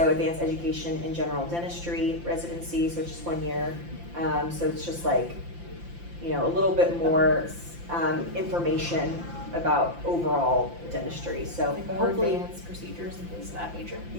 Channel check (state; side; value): late; left; 5.8 ms